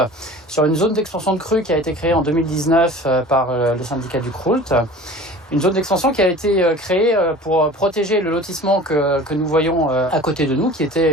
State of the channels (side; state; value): both; normal; correlation 0.42